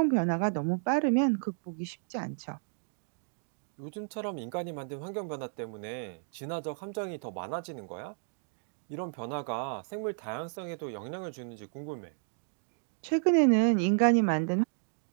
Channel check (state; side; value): silent; left; 56 dB below the other